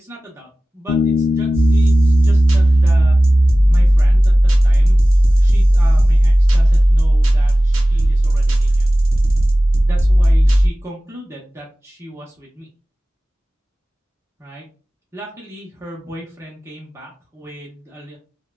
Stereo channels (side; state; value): both; normal; correlation 0.97